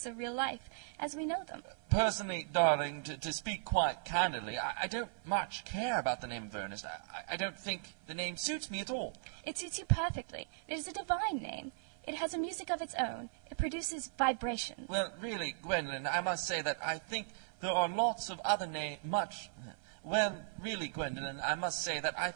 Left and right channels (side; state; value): left; silent; 53 dB below the other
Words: of real life, as we know them. Personally, darling, to speak quite candidly, I don't much care about the name of Earnest. I don't think the name suits me at all. It suits you perfectly. It is a divine name. It has a music of its own. It produces vibrations. Well, really, Gwendolen, I must say that I think there are lots of other Well, really, Gwendolen, I must say that I